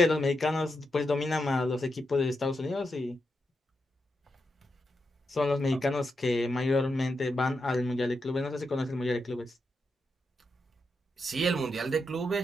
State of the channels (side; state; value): both; normal; correlation 0.85